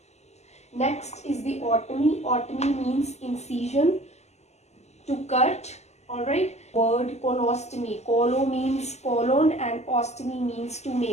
Next is the otomy. Otomy means incision, to cut. Alright. Word colostomy. Colo means colon and ostomy means to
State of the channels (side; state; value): right; late; 0.33 ms